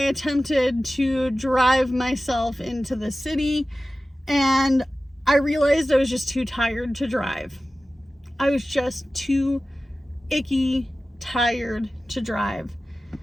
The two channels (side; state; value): both; normal; correlation 0.95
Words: to drive myself into the city, and I realized I was just too tired to drive. I was just too icky tired to drive.